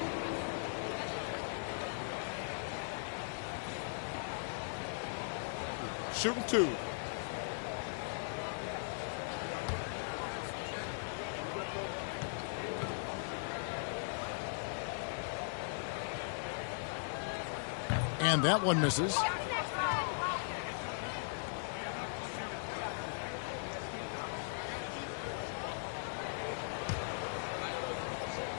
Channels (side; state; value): right; silent; digital silence